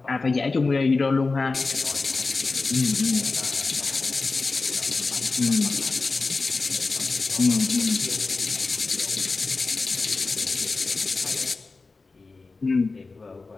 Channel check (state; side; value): quieter; right; 3.8 dB